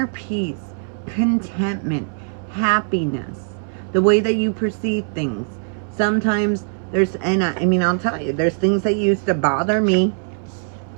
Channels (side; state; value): left; silent; 65 dB below the other